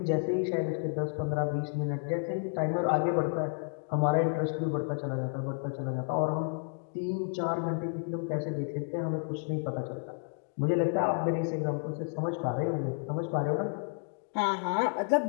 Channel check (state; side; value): silent; right; 57 dB below the other